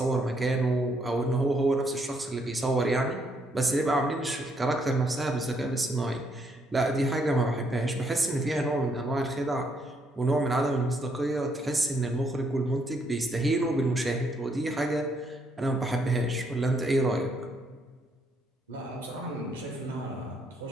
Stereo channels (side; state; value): both; normal; correlation 0.73